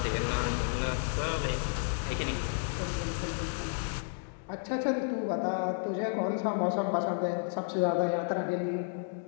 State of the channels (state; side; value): silent; right; digital silence